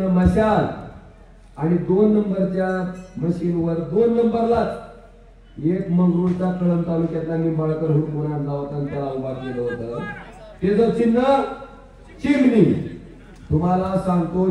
मशाल. आणि 2 नंबरच्या मशीनवर 2 नंबरलाच एक मंगरुळचा कळंब तालुक्यातला निंबाळकर हुडकून आणला होता आणि त्याला उभा केलं होतं. त्याचं चिन्ह चिमणी. तुम्हाला सांगतो,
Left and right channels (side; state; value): both; identical; correlation 1.00